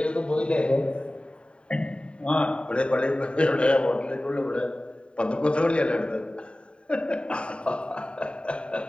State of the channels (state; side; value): late; right; 0.054 ms